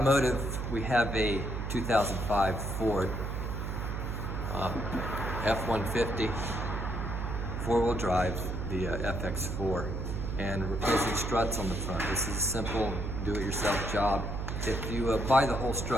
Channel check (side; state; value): right; noise; hum, 4 dB below the sound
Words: We have a 2005 Ford F-150 four-wheel drive, the FX4, and replacing struts on the front. This is a simple do-it-yourself job. If you buy the whole